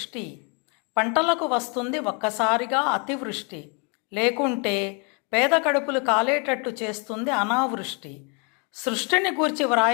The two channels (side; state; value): right; quieter; 34.8 dB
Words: పంటలకు వస్తుంది ఒక్కసారిగా అతివృష్టి, లేకుంటే పేద కడుపులు కాలేటట్టు చేస్తుంది అనావృష్టి. సృష్టిని గూర్చి